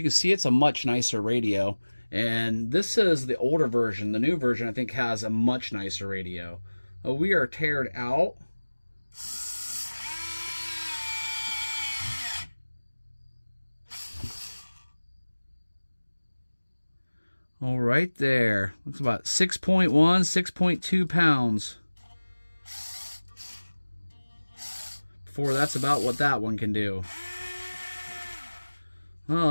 can see, it's a much nicer radio. And this is the older version. The new version, I think, has a much nicer radio. We are teared out. All right there. Looks about 6.1, 6.2 pounds. Before that's about what that one can do. Well,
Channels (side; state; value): both; inverted; correlation -1.00